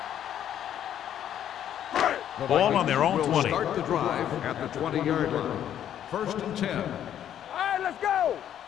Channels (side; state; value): right; quieter; 10.4 dB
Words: Ball on their own 20. Start the drive at the 20-yard line. First and 10. All right, let's go.